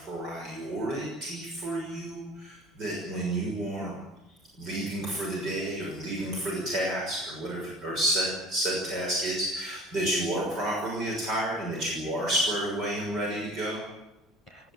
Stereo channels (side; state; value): both; normal; correlation 0.44